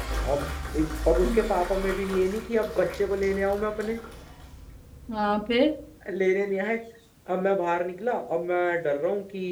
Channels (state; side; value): identical; both; correlation 1.00